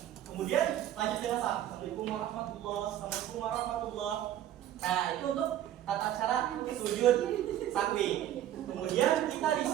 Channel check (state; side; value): quieter; left; 12.0 dB